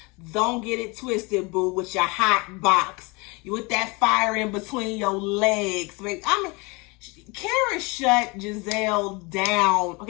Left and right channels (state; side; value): quieter; right; 27.2 dB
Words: Don't get it twisted, boo, with your hot box. You with that fire in between your legs. Karen shut Giselle down.